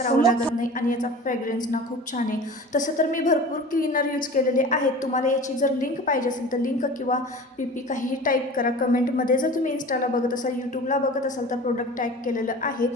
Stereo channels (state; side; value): normal; both; correlation 0.38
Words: लागत नाही आणि याचा फ्रेग्रन्स ना खूप छान आहे. तसं तर मी भरपूर क्लीनर यूज केलेले आहेत. तुम्हाला याची जर लिंक पाहिजे असेल तर लिंक किंवा पी काहीही टाईप करा कमेंटमध्ये. जर तुम्ही इन्स्टाला बघत असाल, यूट्यूबला बघत असाल तर प्रोडक्ट टॅग केलेलं आहे.